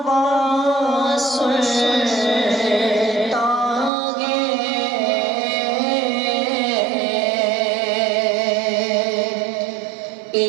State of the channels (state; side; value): drops out; left; at 3.9 s